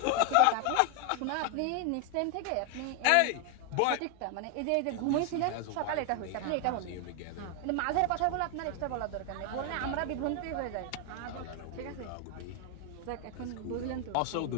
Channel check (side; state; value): both; different; correlation 0.01